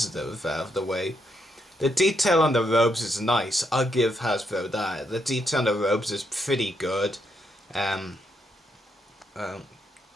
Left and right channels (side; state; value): both; normal; correlation 0.78